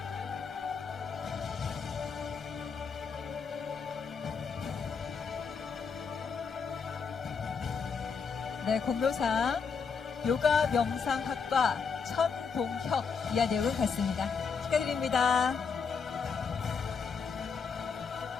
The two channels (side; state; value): right; quieter; 5.6 dB